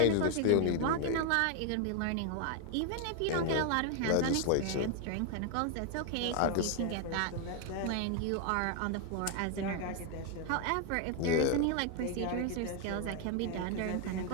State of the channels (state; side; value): different; both; correlation 0.00